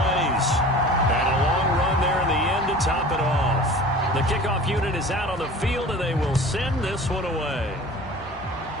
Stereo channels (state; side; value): normal; both; correlation 0.41